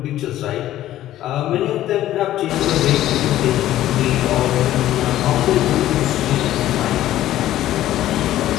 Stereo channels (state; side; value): quieter; right; 13.6 dB